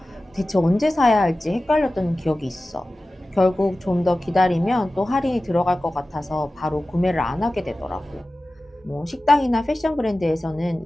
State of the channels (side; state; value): both; normal; correlation 0.96